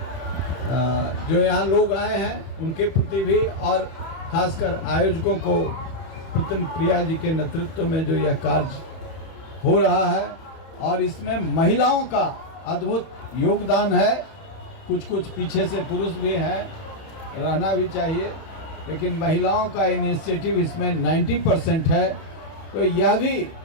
जो यहाँ लोग आए हैं उनके प्रति भी, और खासकर आयोजकों को, पुतन प्रिया जी के नेतृत्व में जो यह कार्य हो रहा है, और इसमें महिलाओं का अद्भुत योगदान है। कुछ कुछ पीछे से पुरुष भी हैं, रहना भी चाहिए, लेकिन महिलाओं का इनिशिएटिव इसमें 90% है। तो यह भी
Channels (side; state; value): right; late; 31 ms